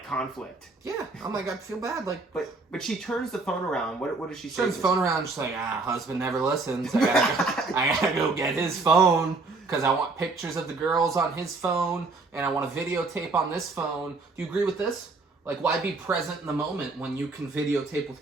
conflict. Yeah, I'm like, I feel bad. Like, but she turns the phone around. What does she say? Turns the phone around. She's like, husband never listens. I gotta go get his phone because I want pictures of the girls on his phone and I want a videotape on this phone. Do you agree with this? Like, why be present in the moment when you can videotape with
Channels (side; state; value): left; quieter; 3.7 dB